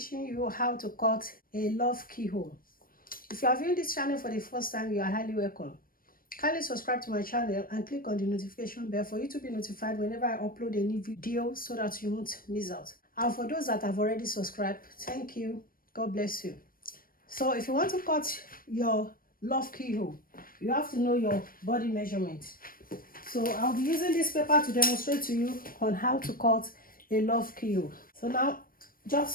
you how to cut a love keyhole. If you are viewing this channel for the first time, you are highly welcome. Kindly subscribe to my channel and click on the notification bell for you to be notified whenever I upload a new video so that you won't miss out. And for those that have already subscribed, thank you. God bless you. So if you want to cut your love keyhole, you have to know your body measurement. So I'll be using this paper to demonstrate to you on how to cut a love keyhole. So now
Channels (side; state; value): right; late; 0.41 ms